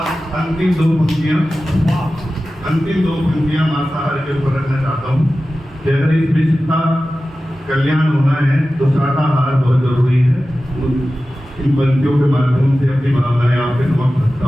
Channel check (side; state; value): both; normal; correlation 0.95